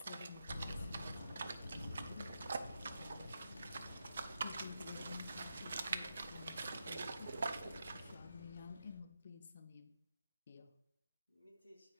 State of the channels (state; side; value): inverted; both; correlation -0.86